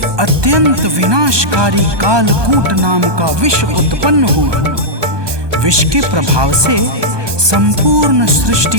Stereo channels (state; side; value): late; left; 1.2 ms